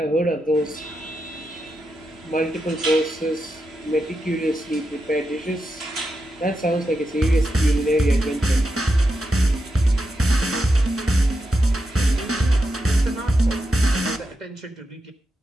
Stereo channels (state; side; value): normal; both; correlation 0.87